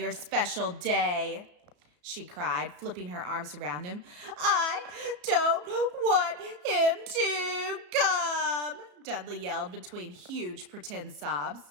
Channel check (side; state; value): left; late; 34 ms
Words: special day, she cried, flipping her arms around him. I don't want him to come, Dudley yelled between huge pretend sobs.